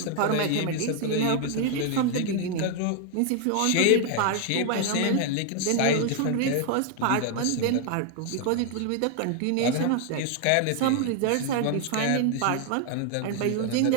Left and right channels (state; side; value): different; both; correlation 0.00